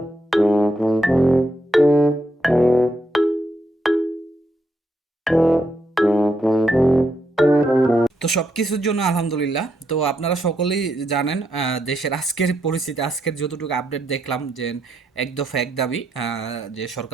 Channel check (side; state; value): both; normal; correlation 0.79